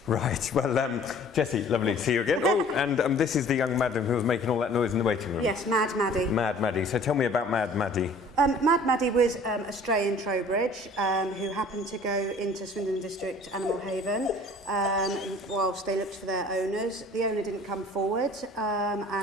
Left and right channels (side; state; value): both; normal; correlation 0.50